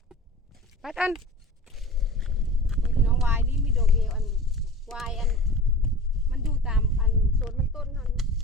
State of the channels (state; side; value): normal; both; correlation 0.38